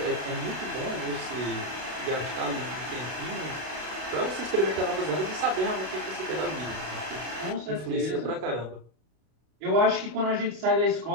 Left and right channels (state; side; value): late; left; 32 ms